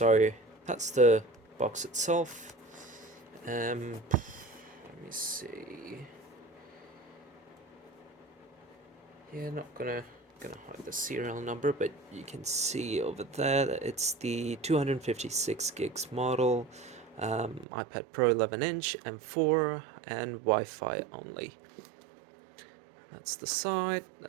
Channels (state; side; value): drops out; left; at 17.7 s